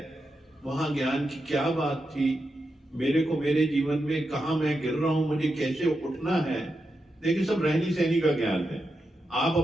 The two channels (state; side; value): normal; both; correlation 0.87